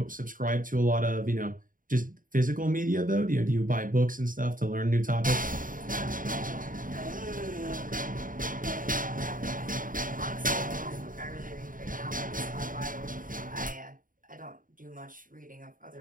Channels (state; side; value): late; left; 0.39 ms